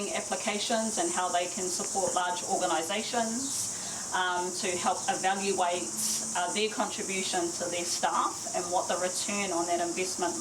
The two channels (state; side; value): identical; both; correlation 1.00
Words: applications and how they can support large organisations to help evaluate their contribution to their staff and what the return on that investment